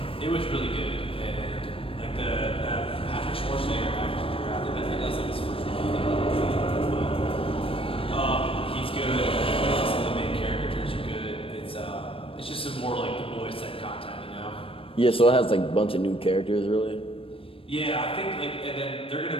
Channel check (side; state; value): right; late; 0.26 ms